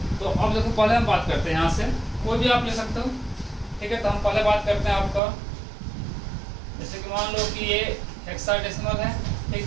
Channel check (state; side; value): drops out; left; at 5.2 s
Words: तो अब देखो पहले हम बात करते हैं, यहाँ से कोई भी आप ले सकते हो, ठीक है। तो हम पहले बात करते हैं आपका, जैसे कि मान लो कि ये हेक्साडेसिमल है,